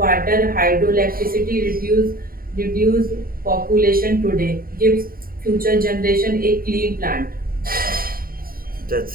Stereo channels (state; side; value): late; left; 0.42 ms